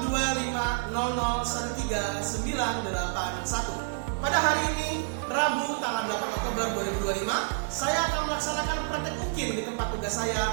Pada hari ini, Rabu tanggal 8 Oktober 2025, saya akan melaksanakan praktek UKIM di tempat tugas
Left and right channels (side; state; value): left; silent; digital silence